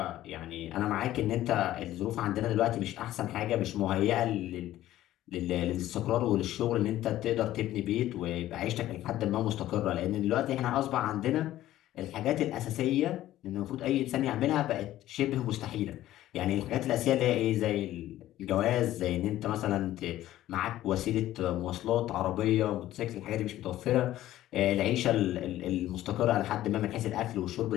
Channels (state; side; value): quieter; right; 14.1 dB